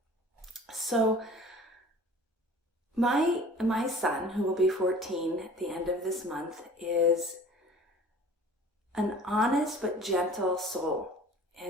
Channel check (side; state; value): both; normal; correlation 0.45